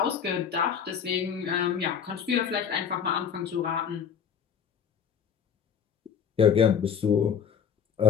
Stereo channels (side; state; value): right; quieter; 7.4 dB